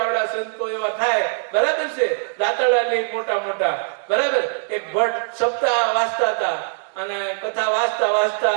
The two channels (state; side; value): silent; left; digital silence